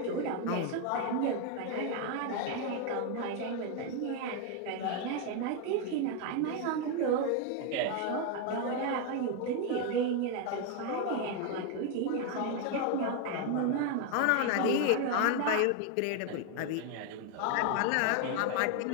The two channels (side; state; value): both; different; correlation 0.01